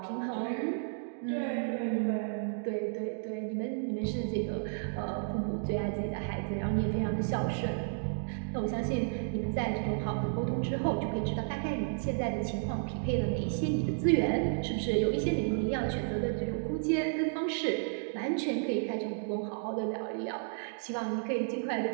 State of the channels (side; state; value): left; silent; digital silence